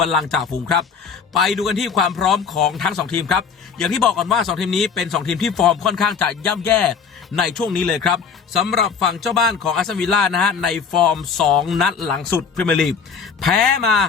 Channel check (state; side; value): quieter; right; 6.0 dB